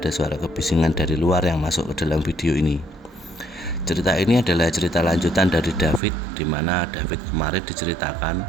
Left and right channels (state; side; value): drops out; left; at 6.0 s